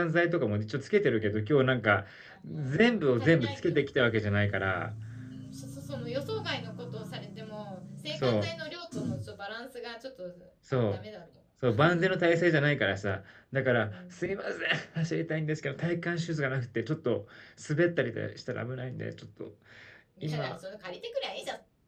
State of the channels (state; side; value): identical; both; correlation 1.00